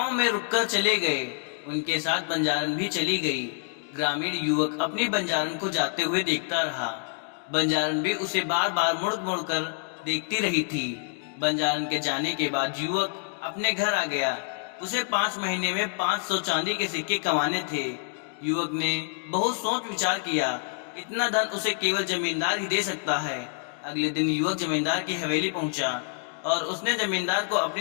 में रुककर चले गए। उनके साथ बंजारन भी चली गई। ग्रामीण युवक अपनी बंजारन को जाते हुए देखता रहा। बंजारन भी उसे बार बार मुड़ मुड़ कर देखती रही थी। बंजारन के जाने के बाद युवक अपने घर आ गया। उसे 5 महीने में 500 चांदी के सिक्के कमाने थे। युवक ने बहुत सोच विचार किया। इतना धन उसे केवल जमींदार ही दे सकता है। अगले दिन युवक जमींदार की हवेली पहुंचा और उसने जमींदार को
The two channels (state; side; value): silent; right; 60 dB below the other